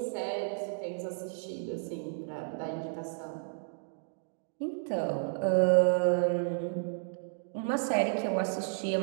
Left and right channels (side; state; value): left; silent; digital silence